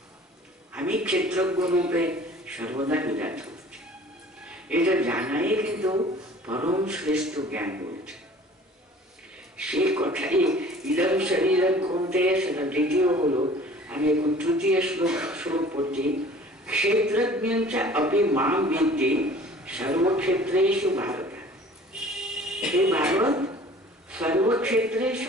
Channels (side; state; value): both; normal; correlation 0.48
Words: আমি ক্ষেত্রজ্ঞ রূপে সর্বদা বিরাজ করছি। এটা জানাই কিন্তু পরম শ্রেষ্ঠ জ্ঞান বলছে। সে কথাই ইদম শরীরম কৌন্তেয়, সেটা দ্বিতীয় হলো। আমি এখন তৃতীয় শ্লোক পড়ছি। ক্ষেত্রজ্ঞ অপি মাম বিদ্ধি সর্বক্ষেত্রেষু ভারত। হে ভারত,